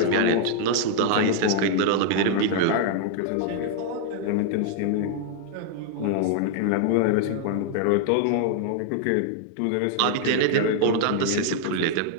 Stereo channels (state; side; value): different; both; correlation 0.00